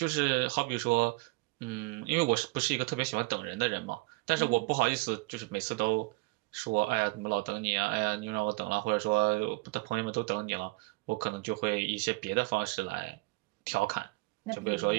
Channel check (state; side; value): quieter; left; 25.4 dB